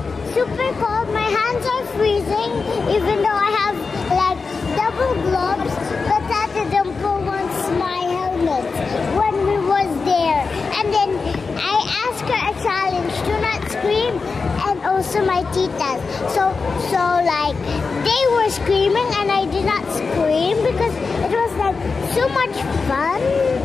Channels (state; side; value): quieter; right; 4.6 dB